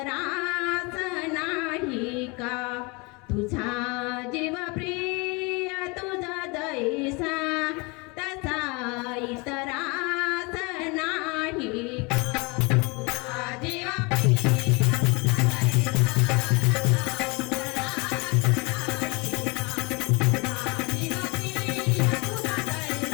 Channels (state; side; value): quieter; right; 28.3 dB